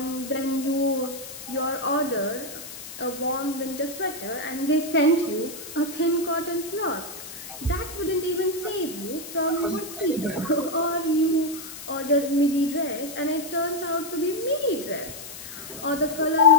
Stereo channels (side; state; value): left; noise; hiss, 12 dB below the sound